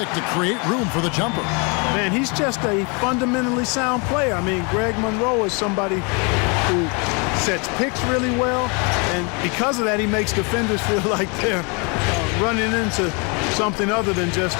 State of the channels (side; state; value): right; quieter; 32.6 dB